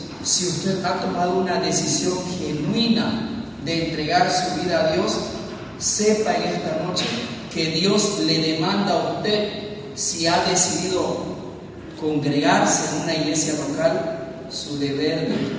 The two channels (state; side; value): identical; both; correlation 1.00